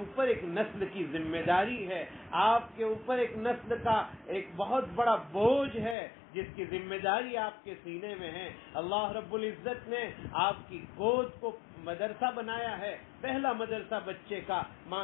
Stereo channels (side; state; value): right; drops out; at 6.0 s